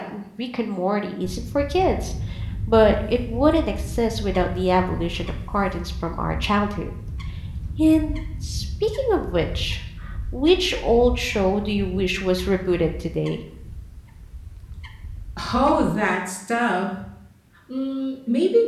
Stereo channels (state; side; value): identical; both; correlation 1.00